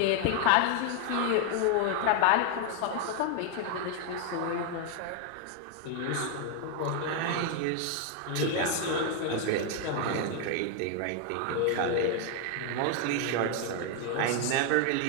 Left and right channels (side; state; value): both; different; correlation 0.01